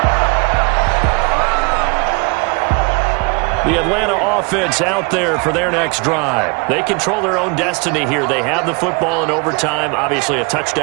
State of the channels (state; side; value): quieter; left; 31.1 dB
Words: The Atlanta offense out there for their next drive. They control their own destiny here. They have the football in overtime. Obviously, a